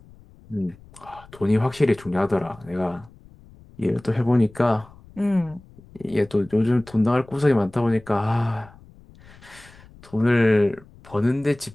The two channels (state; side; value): noise; left; rumble, 24 dB below the sound